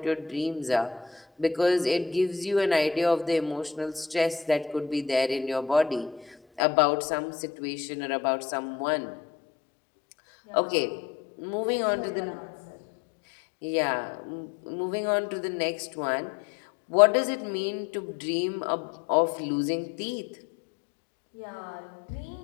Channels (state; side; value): drops out; right; at 6.6 s